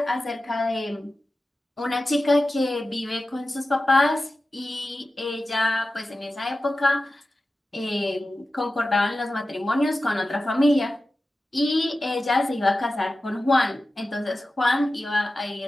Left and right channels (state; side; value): normal; both; correlation 0.94